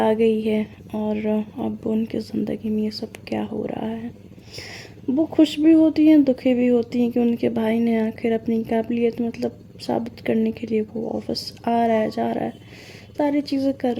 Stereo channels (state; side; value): identical; both; correlation 1.00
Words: गई है और अब उनकी ज़िंदगी में ये सब क्या हो रहा है। वो खुश भी होती हैं, दुखी भी होती हैं कि उनके भाई ने आखिर अपनी काबिलियत मतलब साबित करने के लिए वो ऑफिस आ रहा है, जा रहा है, सारी चीज़ें कर